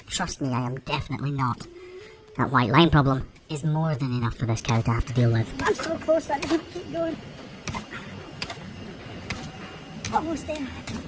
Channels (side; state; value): both; identical; correlation 1.00